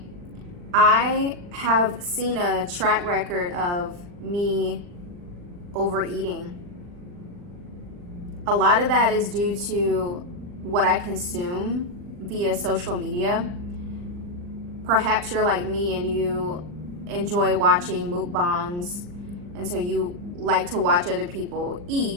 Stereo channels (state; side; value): late; left; 40 ms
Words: I have seen a track record of me overeating. A lot of that is due to what I consume via social media. Perhaps you're like me and you enjoy watching mukbangs, and so you like to watch other people